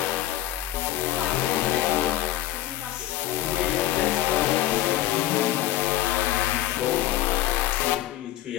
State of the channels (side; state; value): right; quieter; 14.3 dB